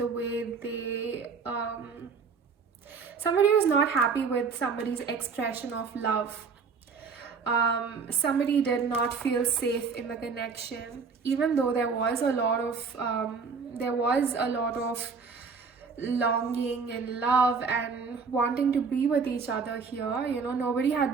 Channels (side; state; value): left; quieter; 5.3 dB